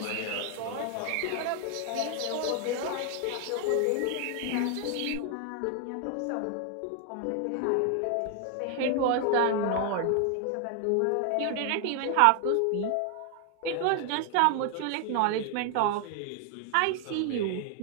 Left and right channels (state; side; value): different; both; correlation 0.00